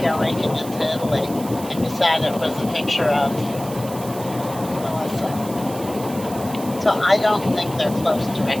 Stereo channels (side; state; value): right; noise; hiss, 15 dB below the sound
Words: making it to Italy, and beside it was a picture of Melissa. So I don't think they're close to